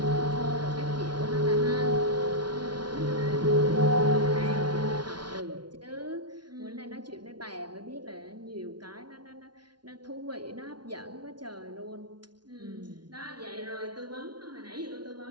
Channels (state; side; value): late; left; 0.70 ms